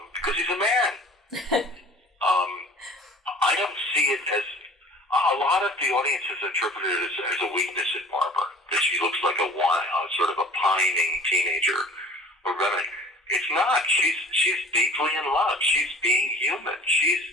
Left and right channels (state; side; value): normal; both; correlation 0.46